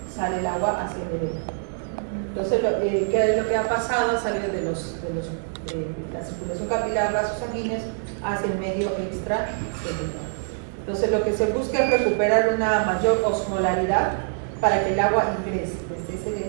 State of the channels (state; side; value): silent; left; digital silence